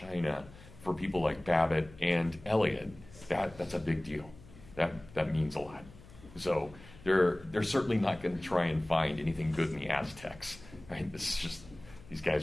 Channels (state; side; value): noise; left; hum, 20 dB below the sound